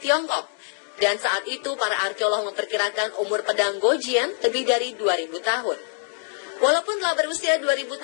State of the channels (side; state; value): right; silent; digital silence